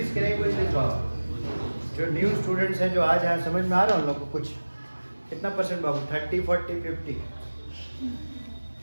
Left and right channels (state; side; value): inverted; both; correlation -1.00